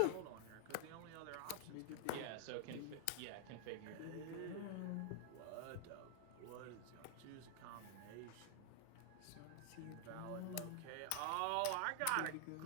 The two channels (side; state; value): both; different; correlation -0.01